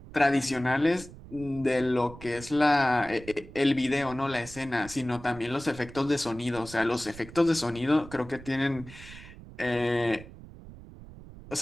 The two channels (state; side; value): noise; right; rumble, 17 dB below the sound